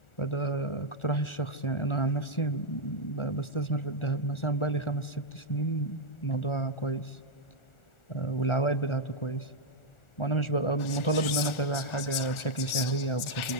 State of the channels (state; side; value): late; right; 1.4 ms